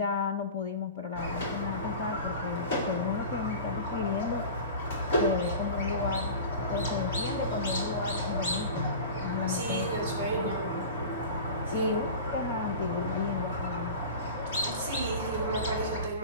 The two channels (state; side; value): inverted; both; correlation -0.35